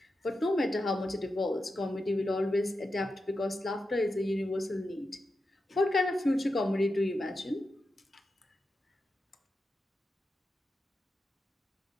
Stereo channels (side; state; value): both; normal; correlation 0.89